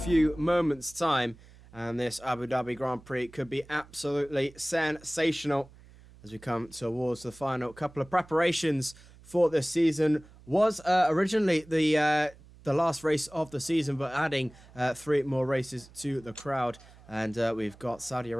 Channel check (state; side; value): noise; right; hum, 23 dB below the sound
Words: moments' time. And this Abu Dhabi Grand Prix could be absolutely sensational as we come towards the final couple of preparations for this season. Was originally the last race of the season, but adding 3 more races to the crowd. And we've got Saudi